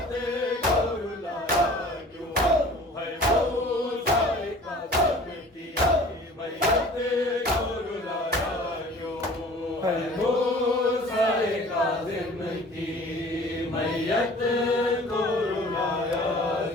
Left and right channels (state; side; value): normal; both; correlation 0.46